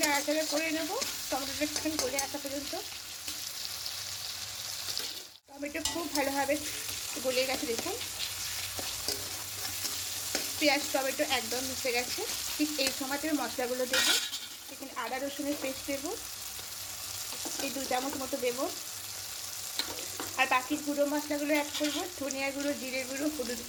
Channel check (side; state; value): both; identical; correlation 1.00